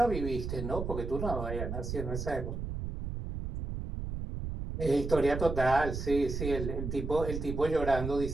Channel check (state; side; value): noise; right; rumble, 5 dB below the sound